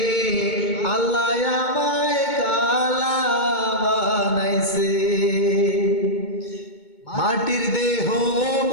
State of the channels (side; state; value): right; late; 2.2 ms